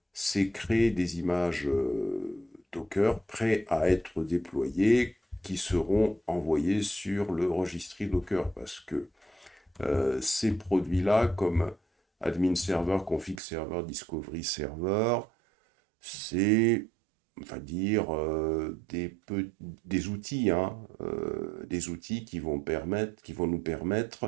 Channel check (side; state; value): left; drops out; at 13.4 s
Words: c'est créer des images Docker prêts à être déployées qui seront envoyées sur le registry Docker parce que ces produits-là, comme admin server, config server, discovery server, c'est, on va dire, des outils, hein, des outils qui vont nous